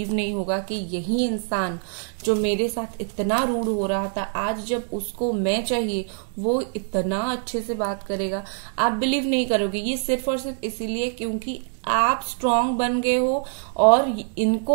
नहीं होगा कि यही इंसान जो मेरे साथ इतना रूड हो रहा था, आज जब उसको मैं चाहिए वो इतना अच्छे से बात करेगा। आप बिलीव नहीं करोगे, ये सिर्फ और सिर्फ इसीलिए क्योंकि आप स्ट्रांग बन गए हो और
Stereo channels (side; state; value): left; silent; 59 dB below the other